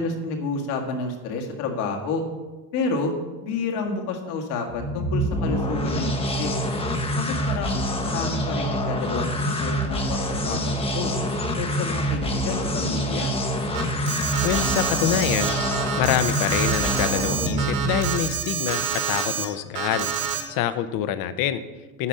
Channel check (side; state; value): both; normal; correlation 0.19